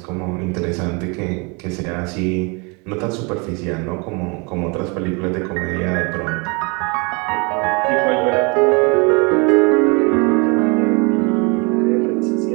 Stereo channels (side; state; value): left; quieter; 30.9 dB